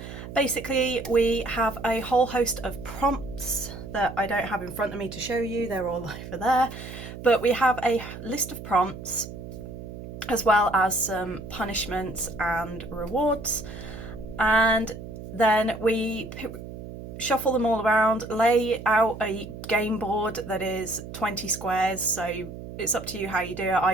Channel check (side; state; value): right; noise; hum, 11 dB below the sound